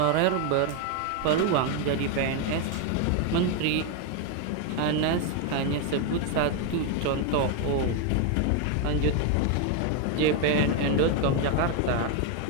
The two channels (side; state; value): both; different; correlation 0.01